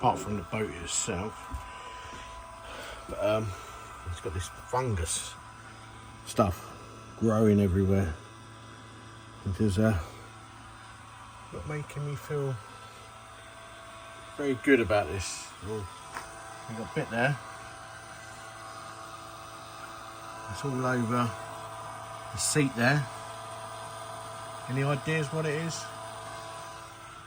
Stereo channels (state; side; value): identical; both; correlation 1.00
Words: from the boat itself. But it's got this fungus stuff growing everywhere. It is not making me feel very good about this. Oh, we got a bit there. It's all over the seat there. Any ideas what it is?